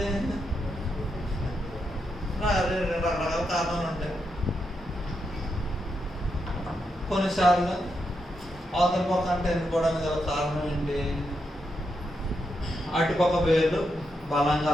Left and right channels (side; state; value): both; normal; correlation 0.83